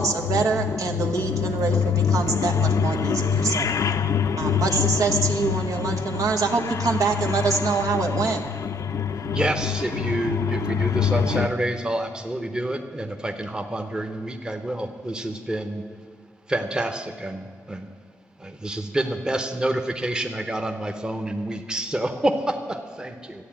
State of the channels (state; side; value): normal; both; correlation 0.66